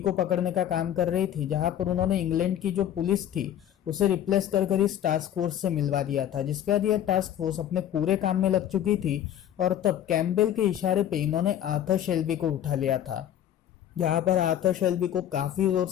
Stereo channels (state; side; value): quieter; right; 11.0 dB